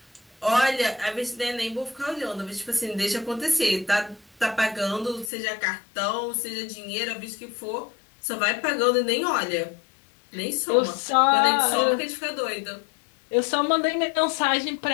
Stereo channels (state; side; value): drops out; right; at 5.3 s